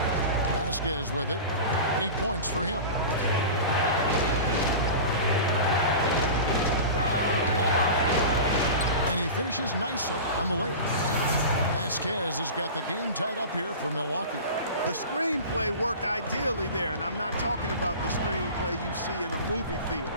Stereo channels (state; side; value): inverted; both; correlation -0.32